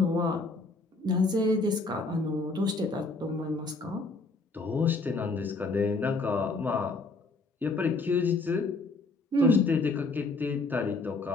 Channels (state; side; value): quieter; right; 3.4 dB